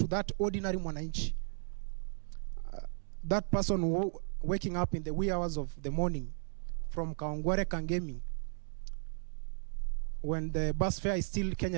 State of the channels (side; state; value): left; silent; digital silence